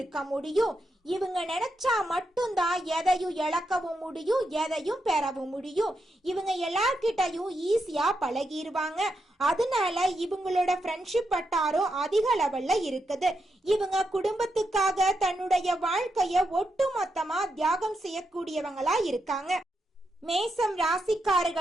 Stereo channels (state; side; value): normal; both; correlation 0.84